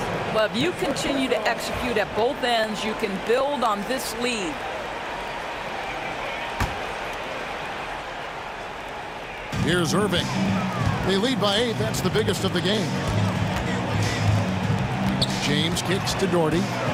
Well, if you continue to execute at both ends, you can build on this lead. Here's Irving. They lead by 8. That's the biggest of the game. James kicks to Doherty.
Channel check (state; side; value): identical; both; correlation 1.00